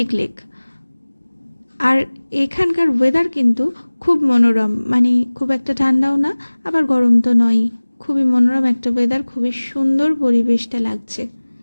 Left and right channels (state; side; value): inverted; both; correlation -1.00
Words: লেক। আর এখানকার ওয়েদার কিন্তু খুব মনোরম, মানে খুব একটা ঠান্ডাও না আবার গরম তো নয়ই, খুবই মনোরম একটা ওয়েদার, খুবই সুন্দর পরিবেশটা লাগছে।